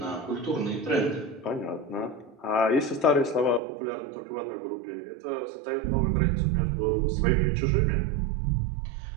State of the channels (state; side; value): drops out; left; at 3.6 s